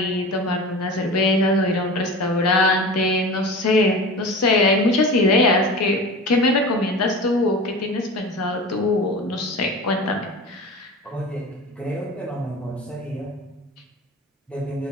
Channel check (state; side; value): normal; both; correlation 0.33